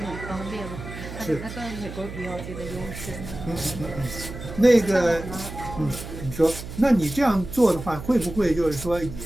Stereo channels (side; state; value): right; noise; hum, 10 dB below the sound